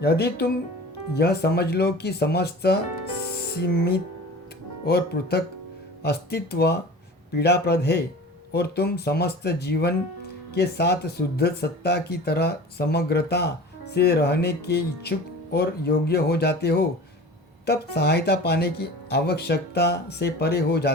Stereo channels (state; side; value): normal; both; correlation 0.38